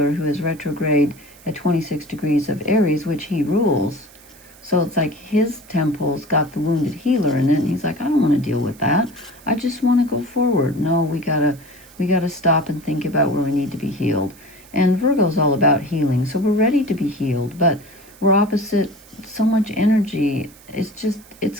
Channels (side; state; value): right; noise; hiss, 24 dB below the sound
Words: who is retrograde at 26 degrees of Aries, which he rules. So it's like his temple's got the wounded healer in it, and he's like, I don't want to deal with that. I just want to go forward. No, we gotta stop and think about where we need to be healed. And Virgo's all about healing, so we're ready to be healed, but we're opposite so much energy.